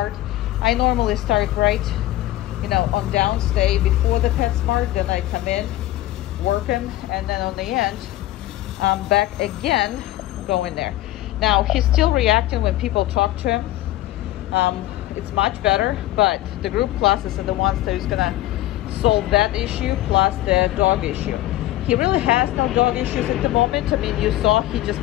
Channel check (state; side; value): quieter; right; 15.4 dB